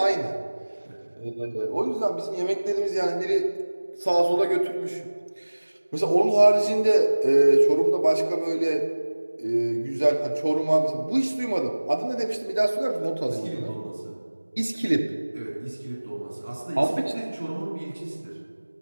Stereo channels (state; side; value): inverted; both; correlation -1.00